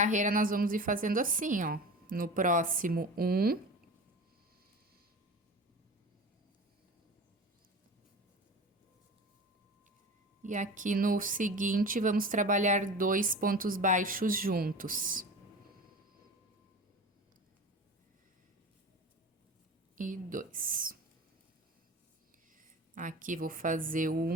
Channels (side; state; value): both; normal; correlation 0.33